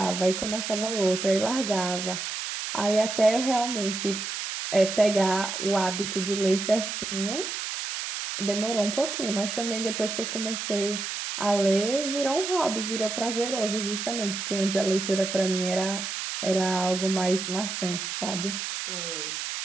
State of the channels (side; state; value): right; noise; hiss, 4 dB below the sound